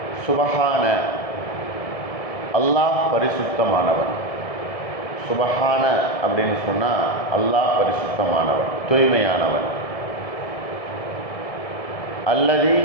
சுபஹான, அல்லாஹ் பரிசுத்தமானவன். சுபஹான அப்படின்னு சொன்னால் அல்லாஹ் பரிசுத்தமானவன், தூய்மையானவன். அல்லதி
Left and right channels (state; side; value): late; right; 1.7 ms